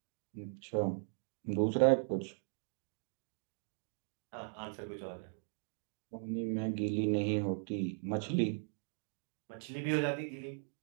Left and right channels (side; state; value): left; silent; 52 dB below the other